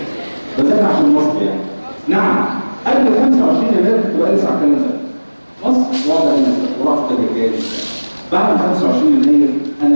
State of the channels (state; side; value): inverted; both; correlation -1.00